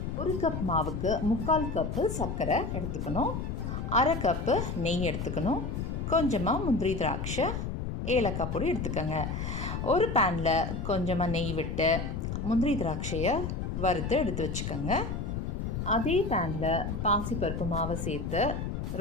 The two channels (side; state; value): left; noise; rumble, 3 dB below the sound